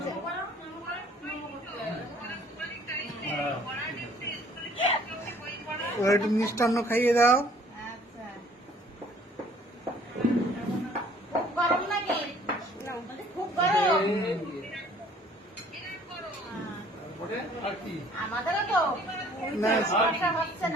একটু মিষ্টান্ন খাইয়ে দাও। আচ্ছা, খুব গরম নাকি? খুব গরম। আমাদেরও তো না, সমস্যা হচ্ছে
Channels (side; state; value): both; normal; correlation 0.56